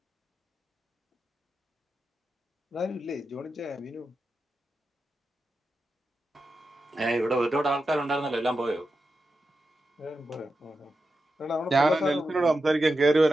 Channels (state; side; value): normal; both; correlation 0.90